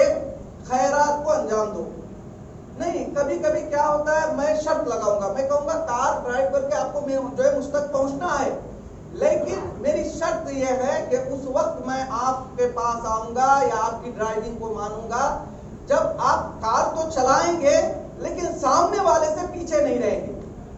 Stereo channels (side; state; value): both; identical; correlation 1.00